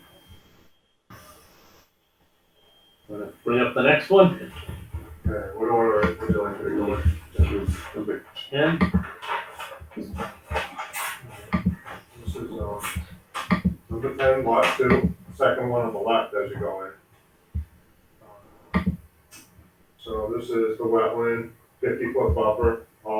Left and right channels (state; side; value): identical; both; correlation 1.00